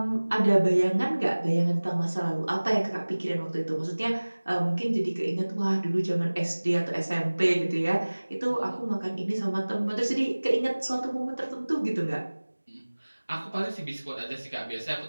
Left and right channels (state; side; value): inverted; both; correlation -1.00